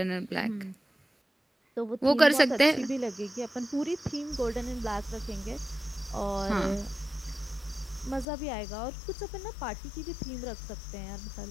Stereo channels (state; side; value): drops out; right; at 8.2 s